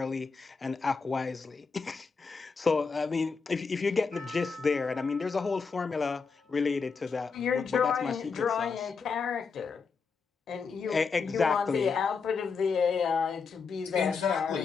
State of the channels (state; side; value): quieter; right; 5.1 dB